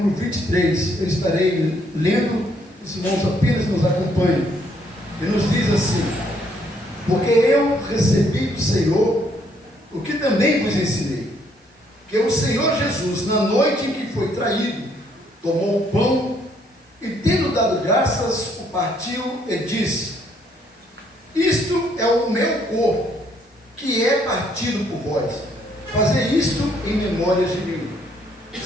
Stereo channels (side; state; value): both; normal; correlation 0.68